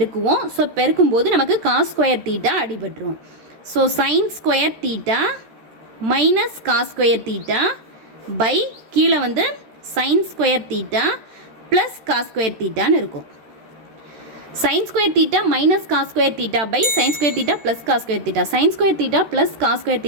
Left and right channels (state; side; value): late; left; 13 ms